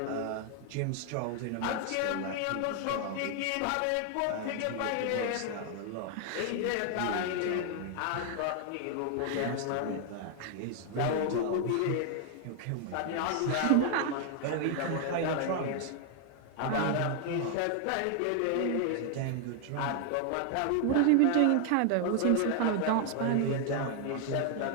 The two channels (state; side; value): different; both; correlation 0.00